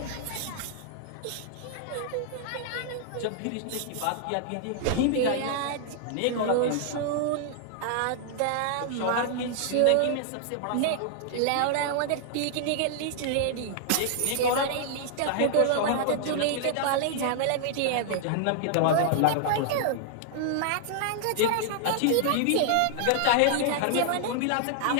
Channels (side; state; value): both; different; correlation -0.01